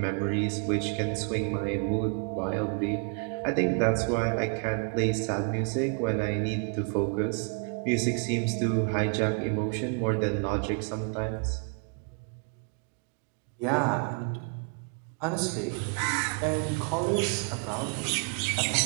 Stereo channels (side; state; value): left; quieter; 37.3 dB